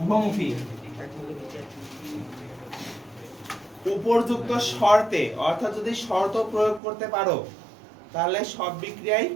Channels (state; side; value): drops out; left; at 6.8 s